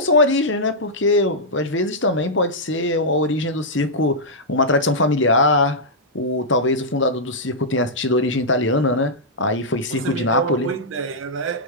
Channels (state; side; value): normal; both; correlation -0.09